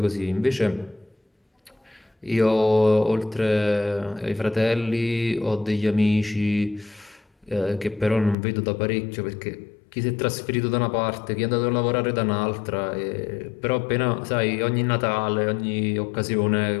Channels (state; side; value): drops out; right; at 8.3 s